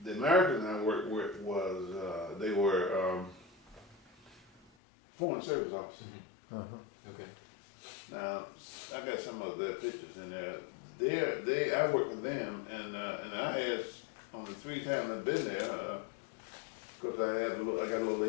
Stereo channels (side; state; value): right; drops out; at 4.7 s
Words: the Americans I worked with was, they were Foreign Service officers. Uh-huh. Okay. Now, I got some of their pictures in there. I worked with them, and I had, on the 3 times I've been there, because I got a little